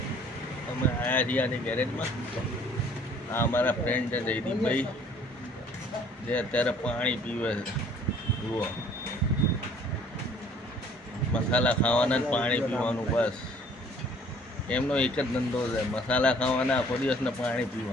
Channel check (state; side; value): normal; both; correlation 0.56